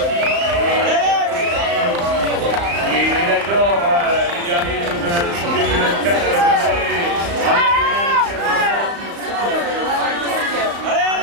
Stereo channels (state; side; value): late; left; 35 ms